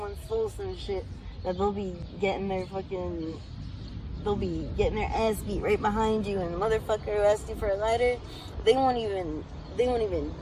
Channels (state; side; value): identical; both; correlation 1.00